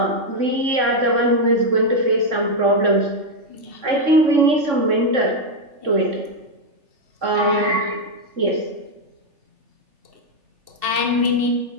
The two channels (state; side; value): late; left; 3.4 ms